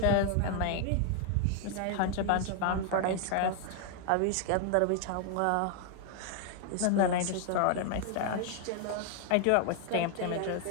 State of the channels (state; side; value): different; both; correlation 0.00